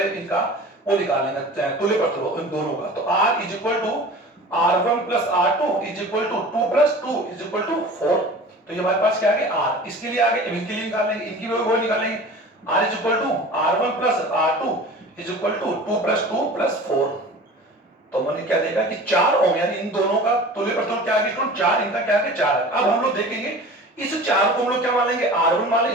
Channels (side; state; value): both; normal; correlation 0.39